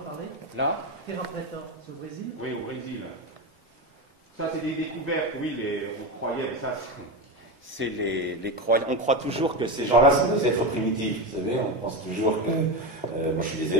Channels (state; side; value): normal; both; correlation 0.17